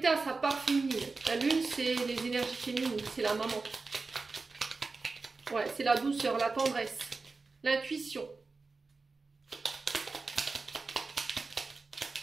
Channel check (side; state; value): left; quieter; 4.0 dB